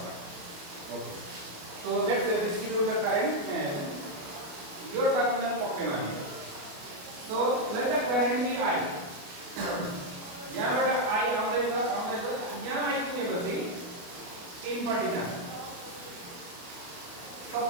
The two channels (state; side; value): late; left; 28 ms